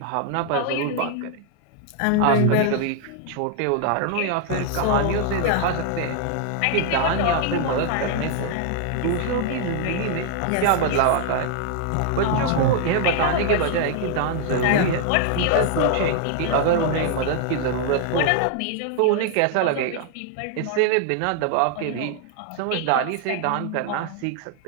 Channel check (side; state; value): both; different; correlation 0.00